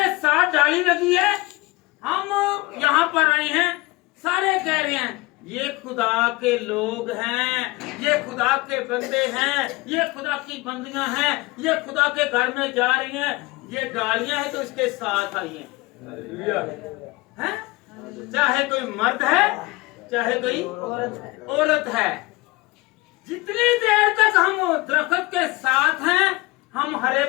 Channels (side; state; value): right; quieter; 22.8 dB